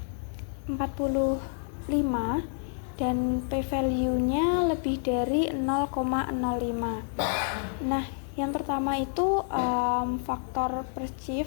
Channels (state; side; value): silent; right; 59 dB below the other